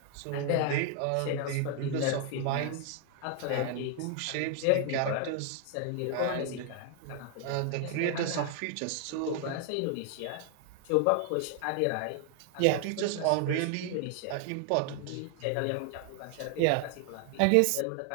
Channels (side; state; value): both; different; correlation 0.00